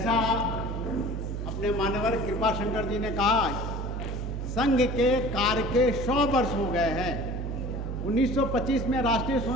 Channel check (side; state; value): right; noise; hum, 4 dB below the sound